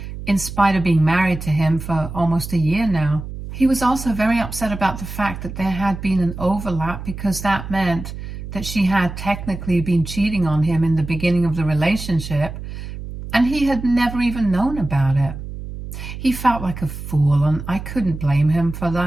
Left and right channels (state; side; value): noise; right; hum, 9 dB below the sound